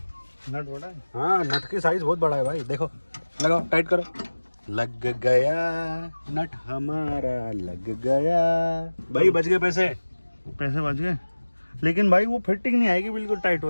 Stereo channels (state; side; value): inverted; both; correlation -1.00